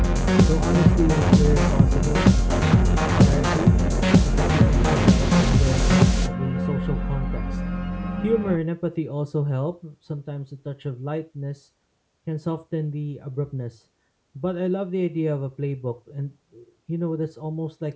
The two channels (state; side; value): identical; both; correlation 1.00